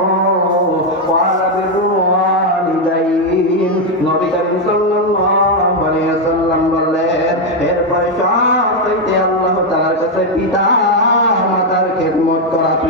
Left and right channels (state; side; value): normal; both; correlation 0.03